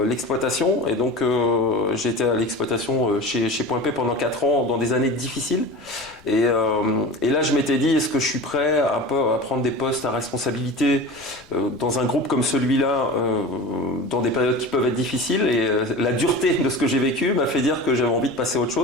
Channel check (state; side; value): noise; left; rumble, 27 dB below the sound